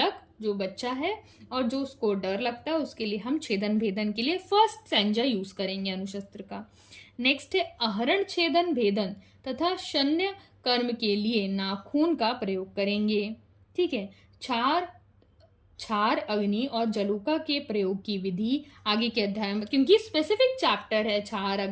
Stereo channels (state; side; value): identical; both; correlation 1.00